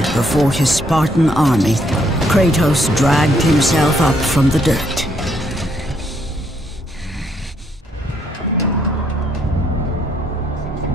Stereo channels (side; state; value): both; normal; correlation 0.71